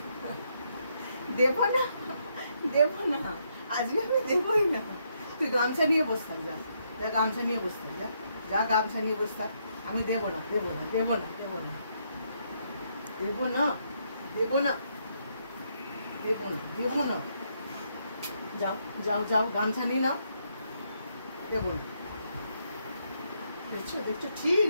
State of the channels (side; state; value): both; inverted; correlation -0.76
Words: দেবো না দেবো না, আজকে আমি দেবই না। তুই গামছা নিয়ে বস থাক, যা যা গামছা নিয়ে বস থাক, যা যা গামছা নিয়ে বস থাক, আমি দেবো না দেবো না দেবো না দেবো না দেবো না দেবো না দেবো না দেবো না, যাও যাও যাও গামছা নিয়ে নাও, দেবো না। দেখছো দেখছো, ঠিক